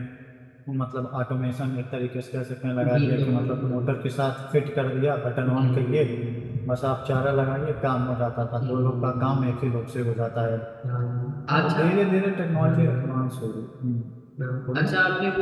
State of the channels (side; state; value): both; identical; correlation 1.00